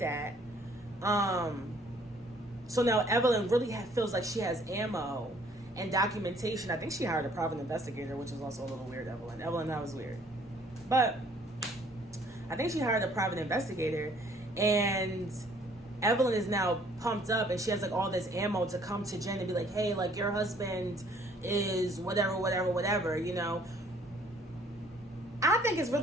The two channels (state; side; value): normal; both; correlation 0.60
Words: So now Evelyn really feels like she has ammo and documentation. I think she hired a private investigator, which is also a little weird, Evelyn. Evelyn, that was weird. But I think she hired a private investigator, and Evelyn is now pumped up, and she has like all this ammo to come to Jen and be like, hey, like your husband is whatever, you know. I think it's